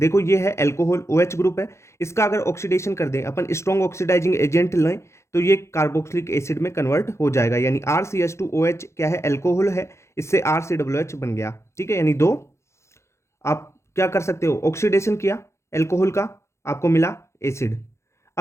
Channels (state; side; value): late; right; 0.13 ms